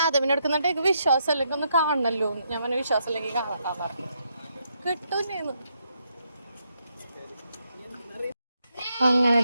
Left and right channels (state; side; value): inverted; both; correlation -0.78